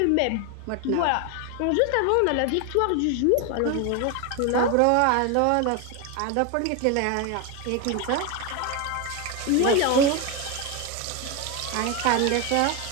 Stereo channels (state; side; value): different; both; correlation 0.02